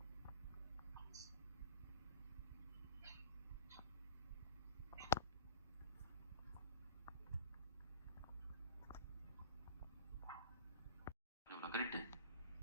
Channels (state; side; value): inverted; both; correlation -0.40